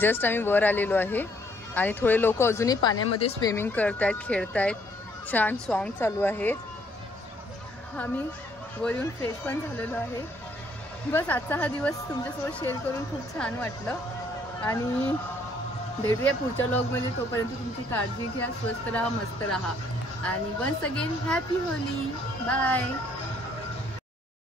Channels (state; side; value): normal; both; correlation 0.66